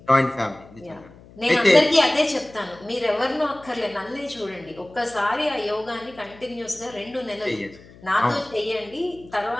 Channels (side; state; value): left; noise; hum, 22 dB below the sound